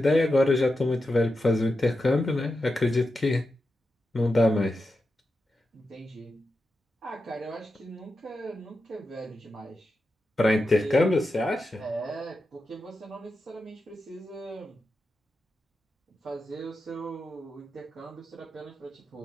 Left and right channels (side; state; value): both; normal; correlation 0.89